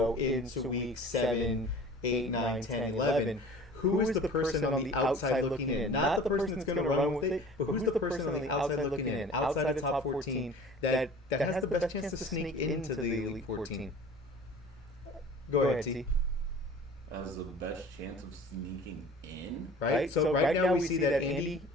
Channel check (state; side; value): normal; both; correlation 0.43